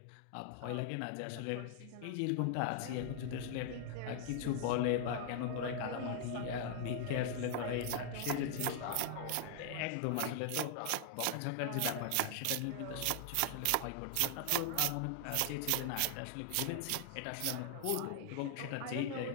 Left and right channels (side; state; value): both; different; correlation 0.00